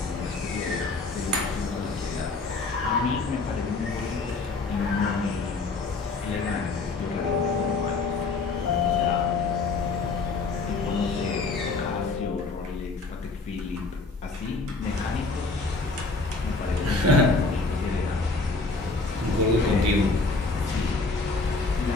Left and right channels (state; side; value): quieter; right; 3.8 dB